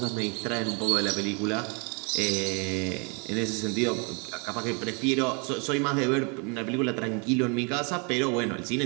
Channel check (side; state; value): left; quieter; 34.5 dB